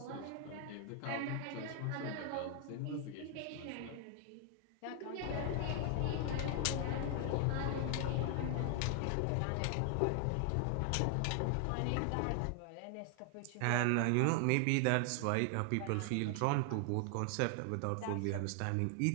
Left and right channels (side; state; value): both; different; correlation 0.00